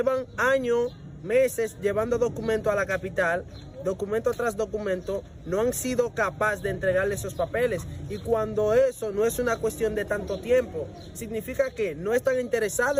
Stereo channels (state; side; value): identical; both; correlation 1.00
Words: años, meses llevando documento a la capital, documento tras documento, no han sido capaces de entregarle esos papeles. Y cuando eso no es una cuestión de tanto tiempo, significa que no están interesados